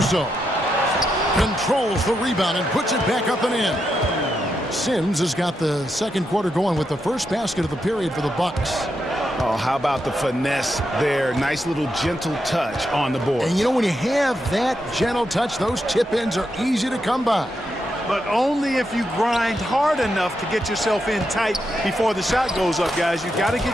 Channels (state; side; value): normal; both; correlation 0.83